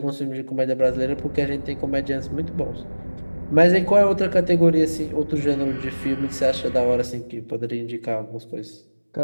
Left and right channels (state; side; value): inverted; both; correlation -1.00